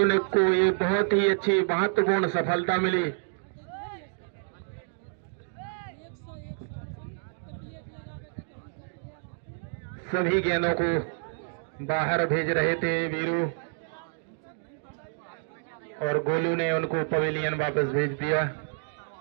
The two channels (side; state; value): left; silent; digital silence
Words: ने को ये बहुत ही अच्छी महत्वपूर्ण सफलता मिली। सभी गेंदों को बाहर भेज रहे थे वीरू, और गोलू ने उनको पवेलियन वापस भेज दिया।